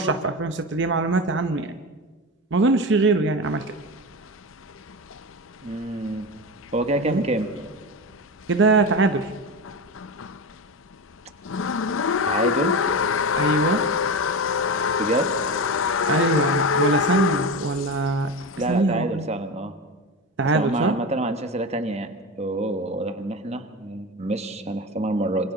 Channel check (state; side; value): normal; both; correlation 0.22